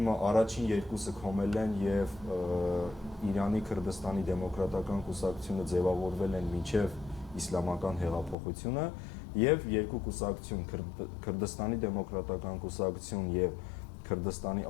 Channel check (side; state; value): right; drops out; at 8.3 s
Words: երկուսը քոմել են եւ Իրանի Քրդստանի դեմոկրատական կուսակցությունը ձևավորվել են մինչեւ իսլամական հեղափոխությունը եւ երկու կուսակցություն Քրդստանի դեմոկրատական կուսակցություն եւ Քրդստանի